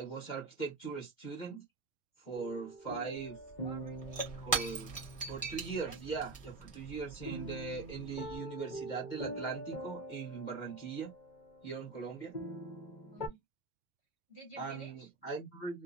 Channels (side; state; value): left; quieter; 3.8 dB